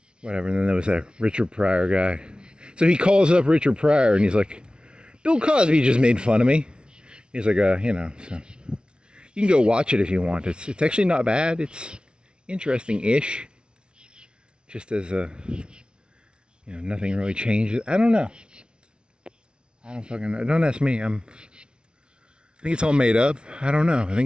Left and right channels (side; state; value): left; late; 0.056 ms